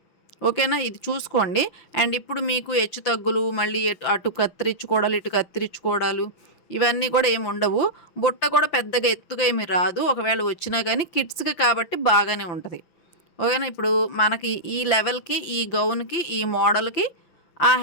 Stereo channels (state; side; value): late; right; 5.8 ms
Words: ఓకేనా, ఇది చూసుకోండి. అండ్ ఇప్పుడు మీకు హెచ్చు తగ్గులు, మళ్ళీ అటు కత్తిరించుకోవడాలు, ఇటు కత్తిరించుకోవడాలు ఇవన్నీ కూడా ఏమి ఉండవు. బుట్ట కూడా పెద్దగా ఎత్తుగా ఏమి రాదు, ఒకవేళ వచ్చినా కానీ కిడ్స్కి కాబట్టి బాగానే ఉంటుంది. ఓకేనా, ఇప్పుడు మనకి ఈ లెవెల్కి, ఈ గౌన్కి, ఈ మోడల్కి ఆ